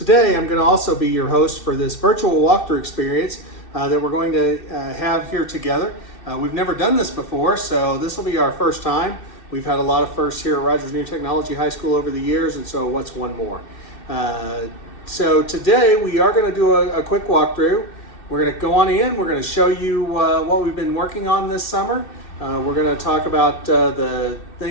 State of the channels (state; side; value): late; right; 2.6 ms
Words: I'm going to also be your host for this virtual walkthrough experience that we're going to have here together. We've never done this before, so this will be our first time. We've had a lot of firsts here at Rogers New Technology High School over the years, and so what's one more? So today we are going to do a quick walkthrough. We're going to go on in, we're going to show you what we've been working on this summer. We're going to talk about the